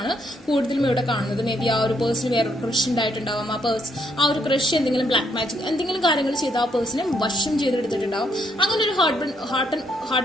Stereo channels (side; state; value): both; normal; correlation 0.73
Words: കൂടുതലും ഇവിടെ കാണുന്നത്. മേ ബി ആ ഒരു പേഴ്സൺ വേറെ ക്രഷ് ഉണ്ടായിട്ടുണ്ടാവും. ആ ഒരു ക്രഷ് എന്തെങ്കിലും ബ്ലാക്ക് മാജിക് എന്തെങ്കിലും കാര്യങ്ങൾ ചെയ്ത് ആ പേഴ്സണെ വശം ചെയ്തെടുത്തിട്ടുണ്ടാവും. അങ്ങനെ ഒരു